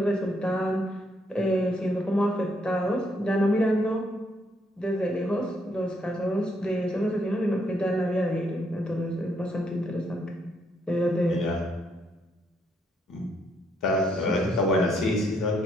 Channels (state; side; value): normal; both; correlation 0.73